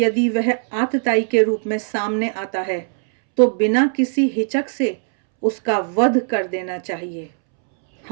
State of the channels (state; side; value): silent; left; 66 dB below the other